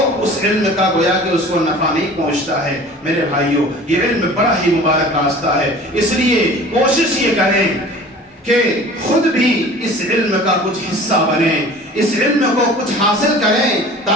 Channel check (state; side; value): normal; both; correlation 0.43